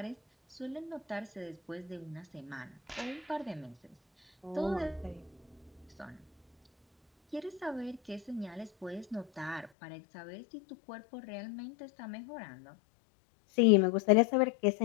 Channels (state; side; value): drops out; right; at 9.7 s